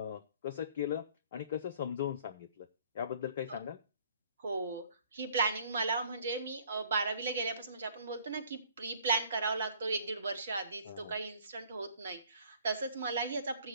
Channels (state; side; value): inverted; both; correlation -0.57